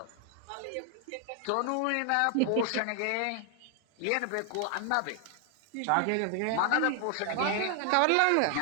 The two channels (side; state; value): both; different; correlation 0.00